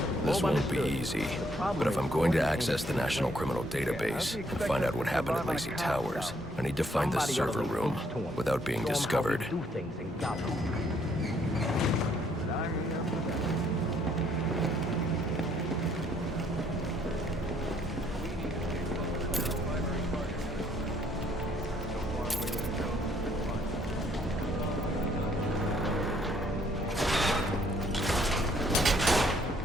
This won't be easy, but if I'm going to access the National Criminal Database and find out what happened at Lacey Towers, I need to find the server room without being discovered.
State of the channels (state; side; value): normal; both; correlation 0.67